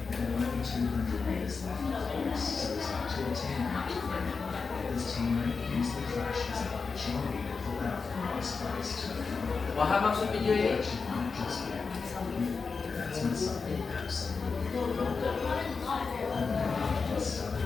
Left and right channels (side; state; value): right; quieter; 4.8 dB